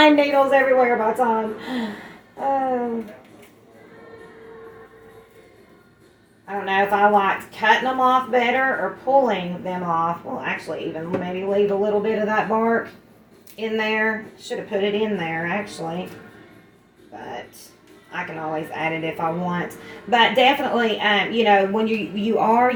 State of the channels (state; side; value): identical; both; correlation 1.00